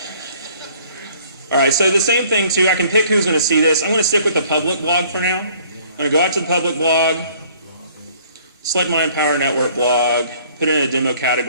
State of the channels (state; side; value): inverted; both; correlation -0.57